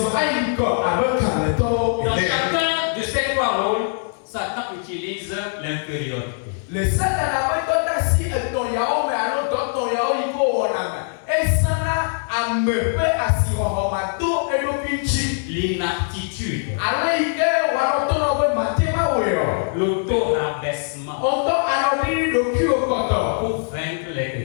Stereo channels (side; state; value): right; silent; digital silence